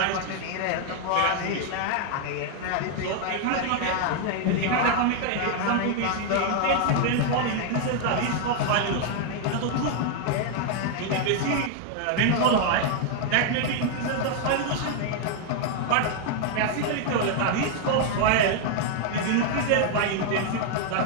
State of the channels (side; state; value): both; different; correlation 0.00